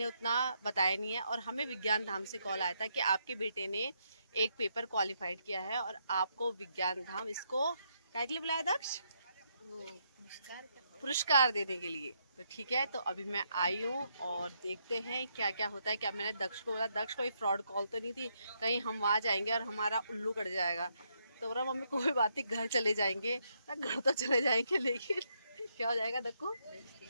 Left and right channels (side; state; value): both; inverted; correlation -0.77